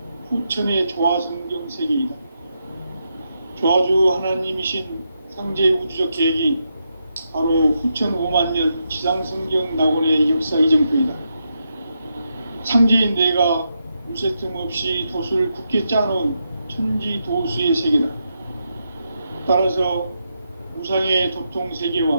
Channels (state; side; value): inverted; both; correlation -0.83